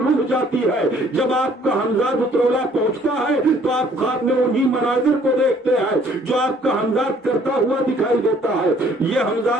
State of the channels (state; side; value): normal; both; correlation 0.60